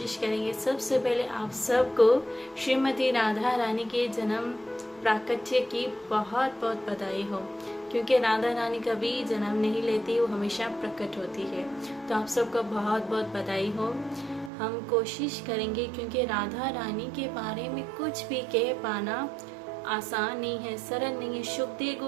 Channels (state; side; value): drops out; left; at 14.5 s